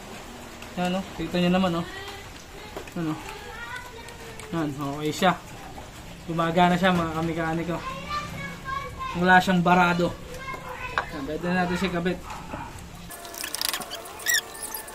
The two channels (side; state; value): both; identical; correlation 1.00